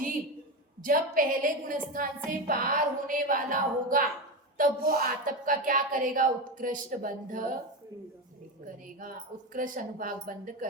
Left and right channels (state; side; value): normal; both; correlation 0.17